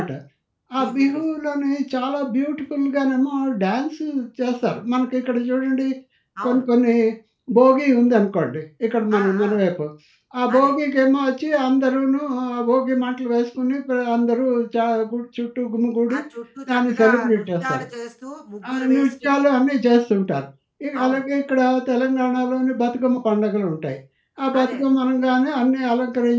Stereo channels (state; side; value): identical; both; correlation 1.00